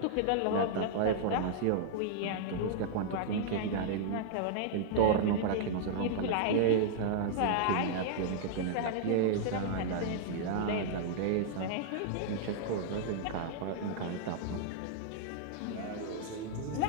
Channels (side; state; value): both; different; correlation -0.01